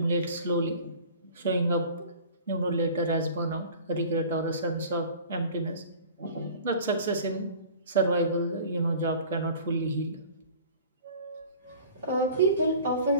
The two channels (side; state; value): both; inverted; correlation -0.44